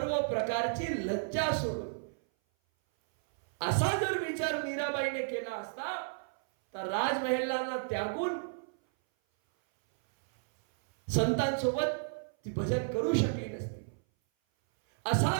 प्रकारची लज्जा सोडून. असा जर विचार मीराबाईने केला असता तर राजमहेलांना त्यागून संतांसोबत ती भजन करू शकली नसती.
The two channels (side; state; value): left; silent; 56 dB below the other